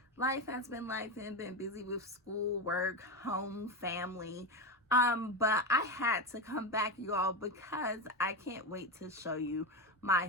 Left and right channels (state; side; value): normal; both; correlation 0.16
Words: Life has been life and been busy with school, work, home, family. But I had to come back, you all, because I can't wait to show you